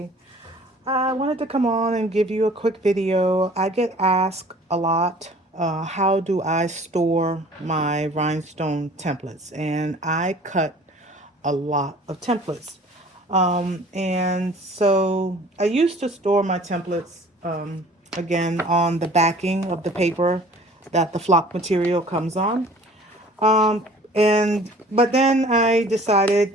I wanted to come on and give you a quick video. I get asked a lot, how do I store my rhinestone templates? And I cut a lot of templates. And so I used to store my templates, again, on the backing of the paper that the flock material comes on. Um, but then I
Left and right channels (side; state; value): both; normal; correlation 0.49